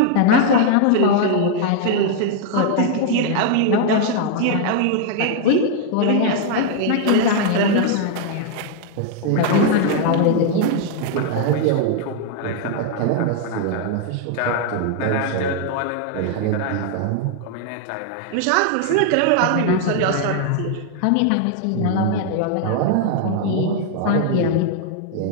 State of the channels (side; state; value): both; different; correlation 0.00